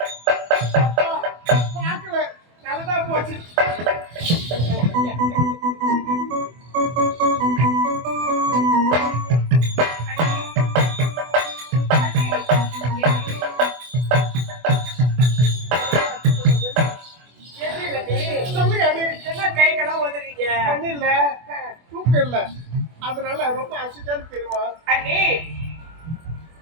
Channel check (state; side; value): late; left; 24 ms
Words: பாக்கல நல்லதா போச்சு. என்ன கைகளாம் உதறீங்க? இல்ல தூக்கம் இல்ல அதனால ரொம்ப அசிச்சான்னு தெரியுமா? அண்ணி